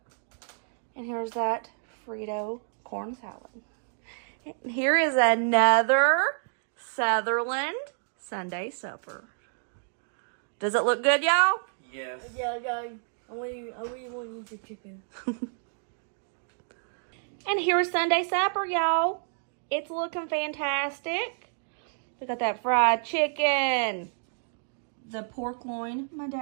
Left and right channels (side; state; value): left; silent; digital silence